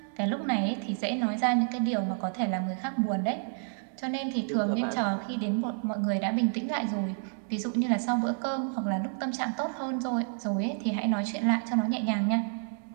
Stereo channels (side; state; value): left; silent; 58 dB below the other